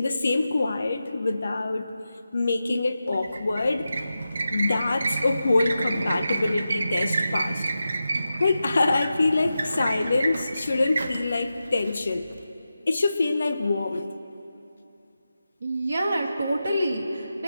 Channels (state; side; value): inverted; both; correlation -0.91